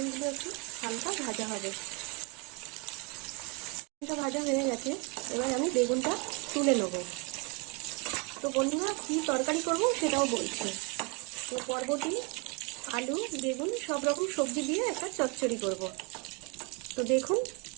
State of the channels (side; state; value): left; quieter; 30.2 dB